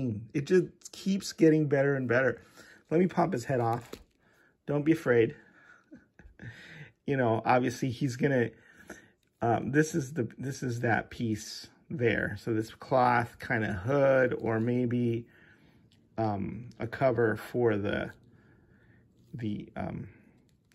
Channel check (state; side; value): identical; both; correlation 1.00